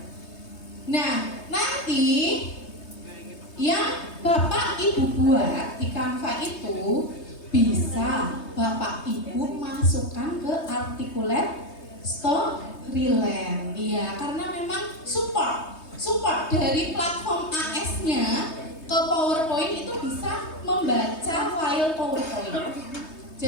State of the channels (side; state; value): right; late; 3.2 ms